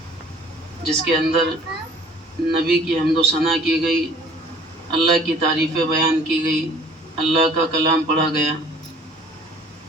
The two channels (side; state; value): both; normal; correlation 0.52